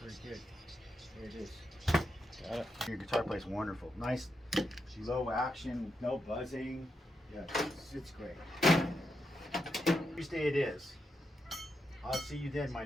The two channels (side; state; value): both; normal; correlation 0.84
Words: good. There it is. Got it. Your guitar plays wonderful. Nice, low action, no buzzing. Yeah, it's great. Tuesday it is. I'll see you then,